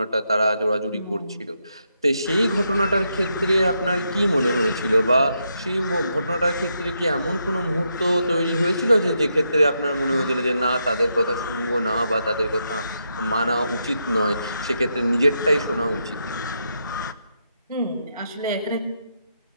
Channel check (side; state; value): both; inverted; correlation -0.81